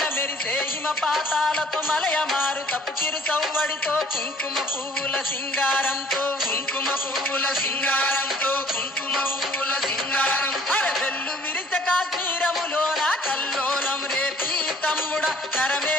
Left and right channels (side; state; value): both; normal; correlation 0.55